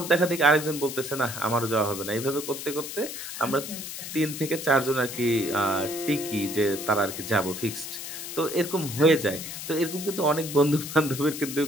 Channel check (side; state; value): left; noise; hiss, 8 dB below the sound